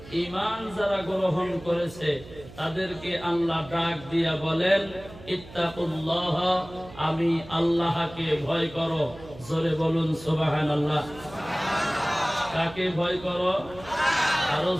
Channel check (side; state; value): right; noise; hum, 18 dB below the sound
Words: ঈমান যারা গ্রহণ করেছে তাদেরকে আল্লাহ ডাক দিয়া বলেন ইত্তাকুল্লাহ, আমি আল্লাহকে ভয় করো। জোরে বলুন সুবহানাল্লাহ। কাকে ভয় করো? আরো